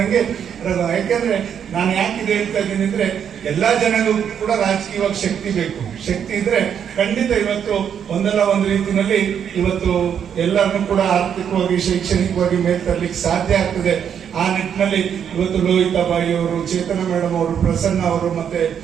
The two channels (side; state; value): left; quieter; 8.3 dB